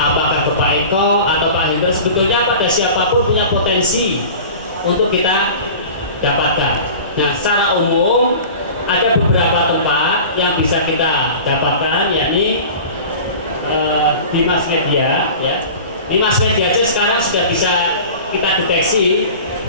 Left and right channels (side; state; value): both; inverted; correlation -0.38